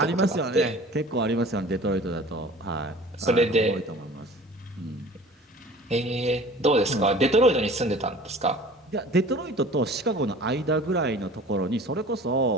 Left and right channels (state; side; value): normal; both; correlation 0.45